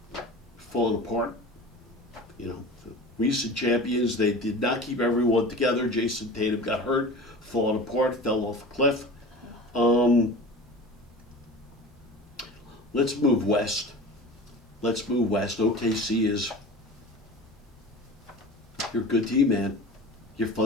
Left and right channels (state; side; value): normal; both; correlation 0.36